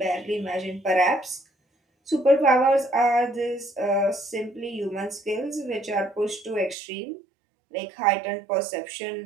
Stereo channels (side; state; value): left; drops out; at 6.8 s